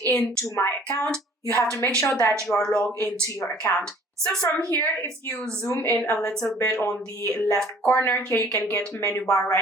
into my account. You have to make sure that you are logged into your account. So from here, if you zoom in a little bit on the left corner, here you can get menu bar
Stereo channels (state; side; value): normal; both; correlation 0.54